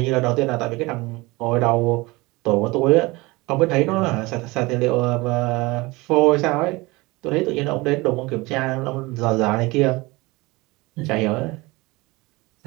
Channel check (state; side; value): quieter; left; 22.9 dB